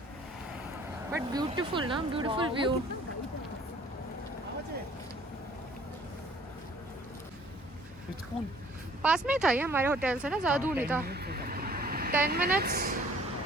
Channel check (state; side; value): normal; both; correlation 0.56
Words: But beautiful ना, beautiful view. पास में ही था ये हमारे होटल से ना, ज़्यादा दूर नहीं था. 10 minutes.